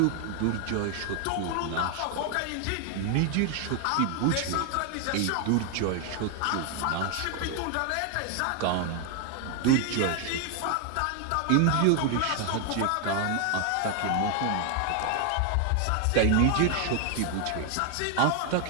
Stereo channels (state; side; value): different; both; correlation 0.00